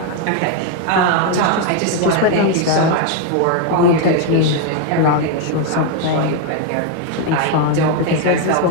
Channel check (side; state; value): both; different; correlation 0.01